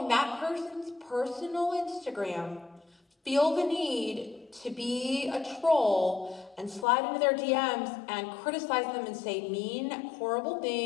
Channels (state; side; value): drops out; right; at 6.9 s